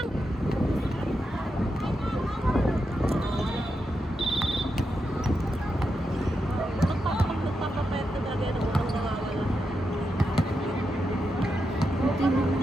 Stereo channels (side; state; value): both; normal; correlation 0.86